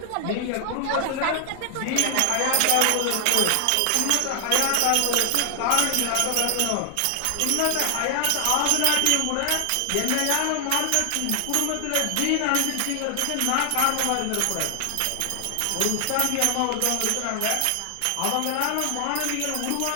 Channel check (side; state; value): both; different; correlation 0.00